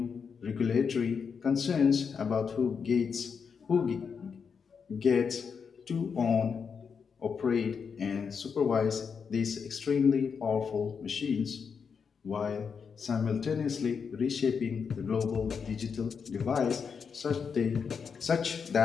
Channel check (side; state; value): right; quieter; 6.2 dB